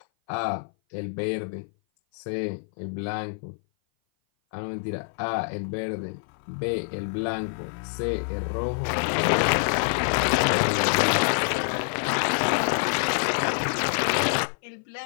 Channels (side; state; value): right; silent; 57 dB below the other